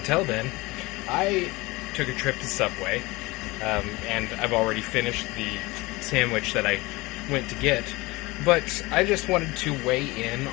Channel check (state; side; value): quieter; right; 22.3 dB